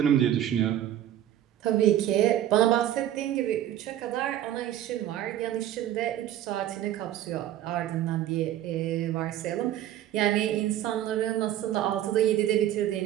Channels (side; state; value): left; quieter; 11.9 dB